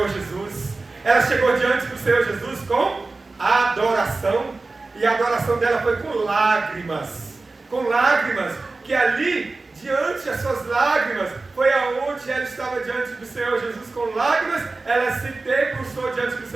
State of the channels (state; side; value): quieter; left; 3.5 dB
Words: Jesus. Ela chegou diante do Senhor Jesus com adoração. E a adoração dela foi com lágrimas. Com lágrimas. Que ali, diante das suas lágrimas, foi aonde ela estava diante do Senhor Jesus com lágrimas. Ela se debruçou diante do